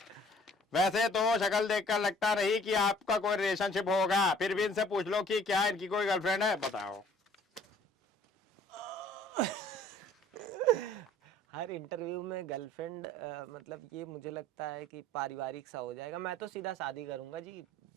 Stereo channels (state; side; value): normal; both; correlation 0.55